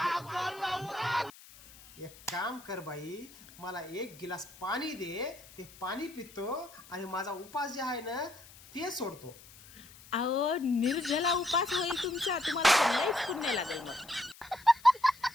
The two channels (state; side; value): noise; left; hiss, 21 dB below the sound